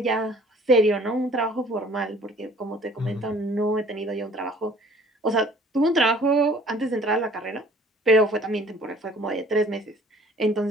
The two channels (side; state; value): both; normal; correlation 0.53